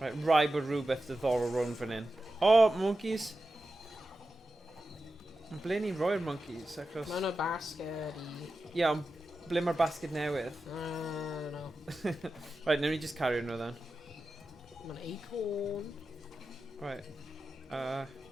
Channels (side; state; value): both; normal; correlation 0.92